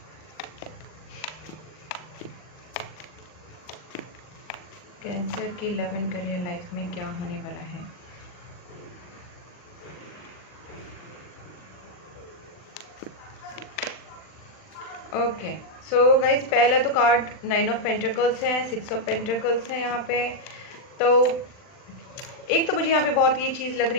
Cancer की लव एंड करियर लाइफ में क्या होने वाला है। ओके सो गाइज, पहला तो कार्ड 9 ऑफ पेंटिकल्स है, 6 ऑफ पेंटिकल्स है यहाँ पे। तो एक तो मुझे यहाँ पे बहुत ये चीज़ लग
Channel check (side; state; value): right; late; 39 ms